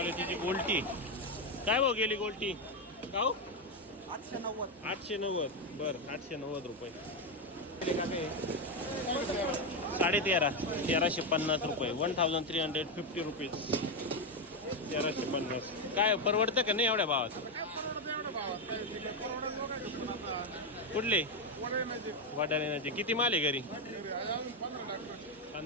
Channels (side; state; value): both; normal; correlation 0.08